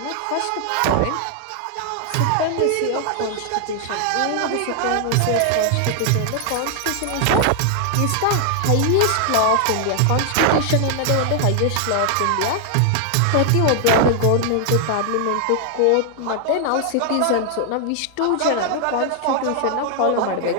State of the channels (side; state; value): both; different; correlation 0.00